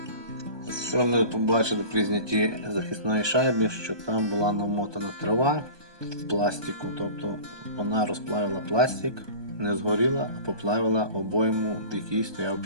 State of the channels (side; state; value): left; late; 1.2 ms